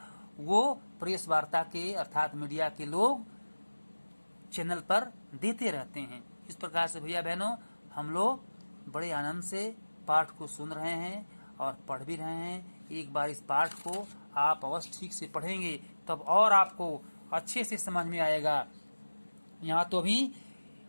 वो प्रेस वार्ता के अर्थात मीडिया के लोग चैनल पर देते रहते हैं। इस प्रकार से भैया बहनों, हम लोग बड़े आनंद से पाठ को सुन रहे हैं और पढ़ भी रहे हैं। एक बार इस पाठ को आप अवश्य ठीक से पढ़ेंगे तब और आपको अच्छे से समझ में आएगा। यहाँ तो अभी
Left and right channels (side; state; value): both; inverted; correlation -1.00